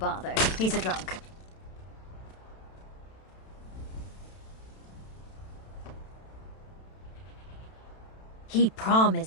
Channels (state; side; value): late; right; 32 ms